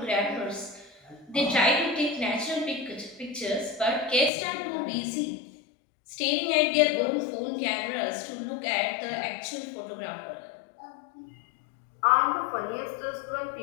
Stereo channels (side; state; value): right; drops out; at 4.3 s